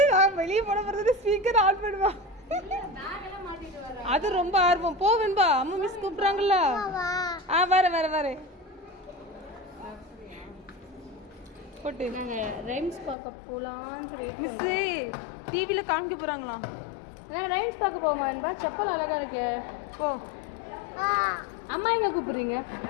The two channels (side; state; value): right; drops out; at 13.2 s